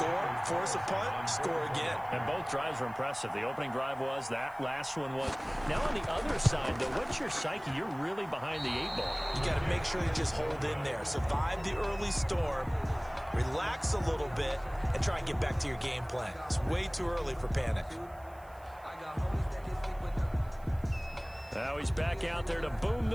force a punt, score again. And both drives were impressive. The opening drive was, that last one was. Now on the other side, though, what's your psyche? You're really behind the 8 ball. You got to make sure you just hold in there. Survive the early storm, relax a little bit, and try and get back to your game plan. It's way too early for panic. Now he's back out there to boom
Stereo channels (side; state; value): right; noise; hiss, 28 dB below the sound